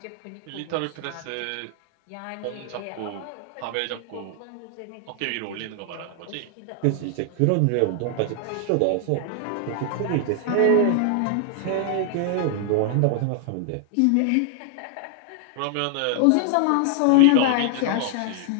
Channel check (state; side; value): different; both; correlation 0.00